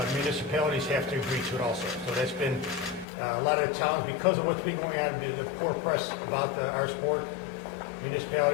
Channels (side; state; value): right; drops out; at 3.1 s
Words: municipalities have to agree to it also. So that's been a lot of towns, because of what's been going on, the poor press about our sport,